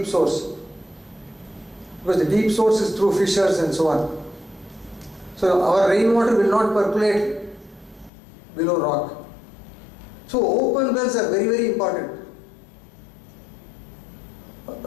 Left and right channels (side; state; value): right; drops out; at 8.1 s